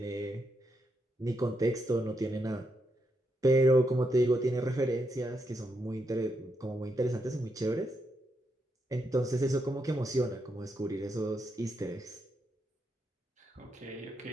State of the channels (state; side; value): normal; both; correlation 0.82